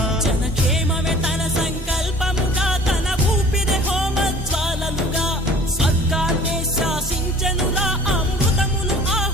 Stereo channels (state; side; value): normal; both; correlation 0.48